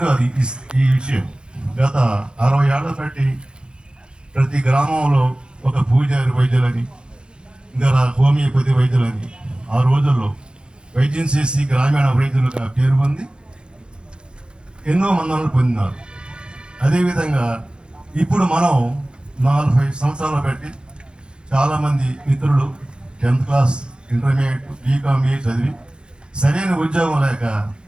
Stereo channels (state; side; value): late; left; 0.051 ms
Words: కాదు ఈ విషయం, గత 60 ఏళ్ల బట్టి ప్రతి గ్రామంలో ఒక పూజారి వైద్యులని, ఇంకా హోమియోపతి వైద్యులని ఆ రోజుల్లో వైద్యం చేసి గ్రామీణ వైద్యులుగా పేరు పొంది ఎన్నో మందులను పొందినారు. అదేవిధంగా ఇప్పుడు మనం 45 సంవత్సరాలు బట్టి చాలామంది మిత్రులు 10th క్లాస్, ఇంటర్మీడియట్, బీకామ్ చదివి సరైన ఉద్యోగం లేక